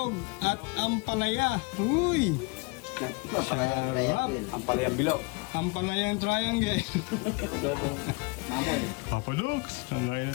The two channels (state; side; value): quieter; right; 28.0 dB